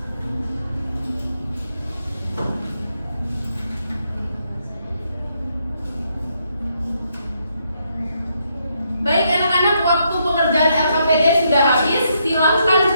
Baik anak-anak, waktu pengerjaan LKPD sudah habis. Silakan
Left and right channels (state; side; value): inverted; both; correlation -0.77